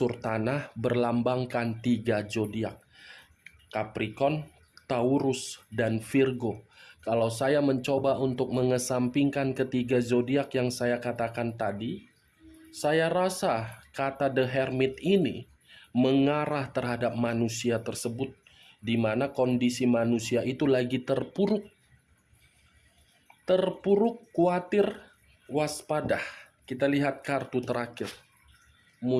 tanah, berlambangkan 3 zodiak. Capricorn, Taurus, dan Virgo. Kalau saya mencoba untuk mengesampingkan ketiga zodiak yang saya katakan tadi, saya rasa kata The Hermit ini mengarah terhadap manusia tersebut di mana kondisi manusia itu lagi terpuruk, khawatir, waspada. Kita lihat kartu terakhir,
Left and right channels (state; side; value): identical; both; correlation 1.00